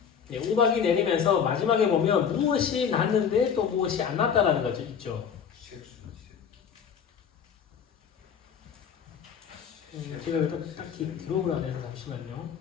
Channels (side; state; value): right; quieter; 7.3 dB